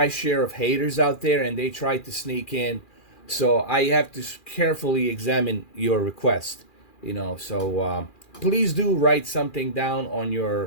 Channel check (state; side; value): late; right; 2.4 ms